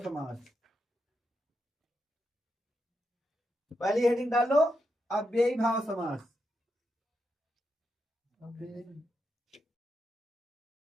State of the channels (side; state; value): both; normal; correlation 0.84